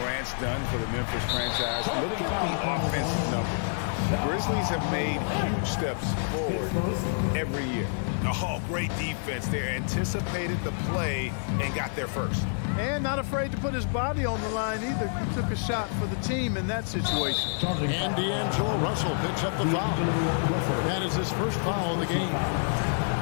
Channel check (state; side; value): silent; right; digital silence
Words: done for the Memphis franchise, look at the offensive numbers. The Grizzlies have made huge steps forward every year. Oh, great defense there. Anticipated the play and got there first. And not afraid to put his body on the line either. He took a shot for the team in that situation. And D'Angelo Russell picks up the foul. That is his first foul of the game.